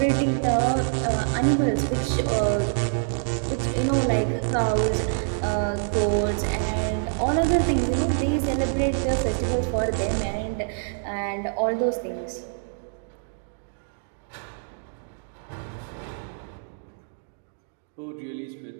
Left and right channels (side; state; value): left; silent; digital silence